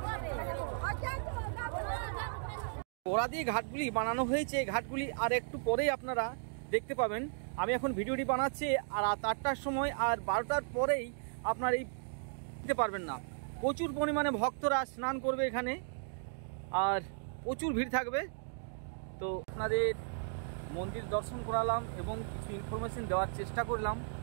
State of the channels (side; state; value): left; silent; digital silence